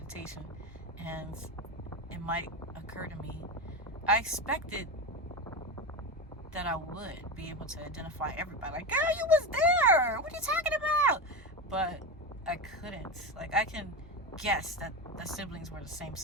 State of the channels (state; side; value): normal; both; correlation 0.19